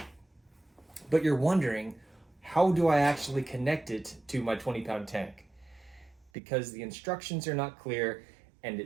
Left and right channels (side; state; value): left; drops out; at 6.3 s